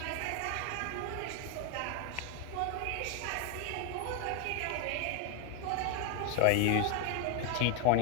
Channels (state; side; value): different; both; correlation 0.01